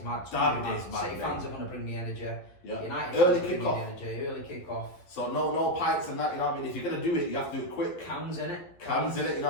mad. Derby Day is mad. City fans are going to bring the energy. Yeah. United Early fans bring kick-off. the energy. Early kick-off. So no pints and that, you know what I mean? If you're going to do it, you have to do it quick. Cans in it. You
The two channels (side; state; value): right; late; 11 ms